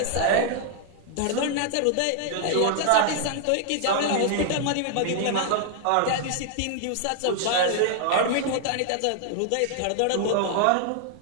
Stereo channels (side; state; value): both; different; correlation -0.01